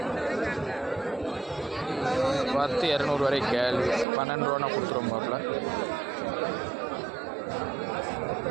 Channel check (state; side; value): drops out; left; at 4.0 s